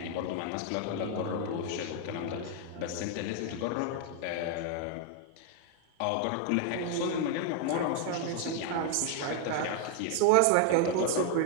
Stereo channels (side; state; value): both; different; correlation 0.00